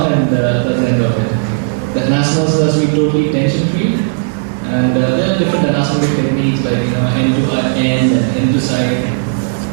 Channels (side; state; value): left; silent; digital silence